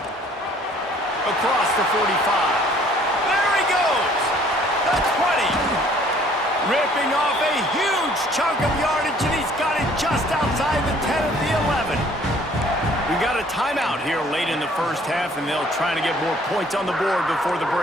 Across the 45. There he goes! The 20. Ripping off a huge chunk of yardage, and he's got it just outside the 10 of the 11. We've got a timeout here late in the first half, and they'll try to get more points on the board before the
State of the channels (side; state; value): both; normal; correlation 0.57